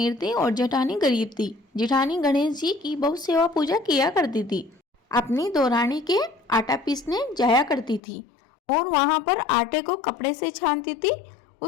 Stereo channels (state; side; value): drops out; right; at 8.0 s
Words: थी और जेठानी गरीब थी। जेठानी गणेश जी की बहुत सेवा पूजा किया करती थी। अपनी दौरानी के आटा पीसने जाया करती थी और वहां पर आटे को कपड़े से छानती थी।